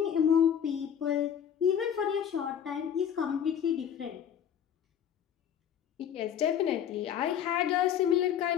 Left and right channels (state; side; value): quieter; right; 8.9 dB